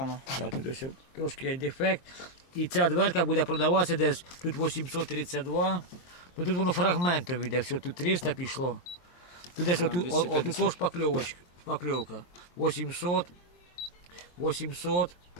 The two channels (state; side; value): late; right; 23 ms